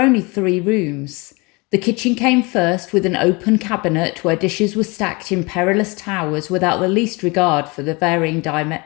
3 rooms. The kitchen came first, with an open cabinet where dishes were stacked in perilous towers without the least regard for the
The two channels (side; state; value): right; quieter; 26.7 dB